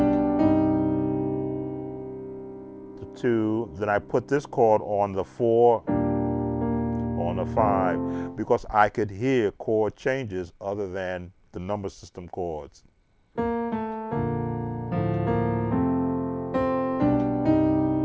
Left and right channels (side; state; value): both; identical; correlation 1.00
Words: The 2. Then I put this chord on the 4, on the 5, because I could hear chord changes other than the number system chords.